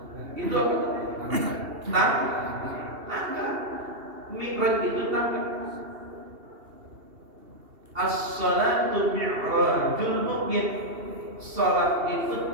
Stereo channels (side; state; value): left; late; 2.7 ms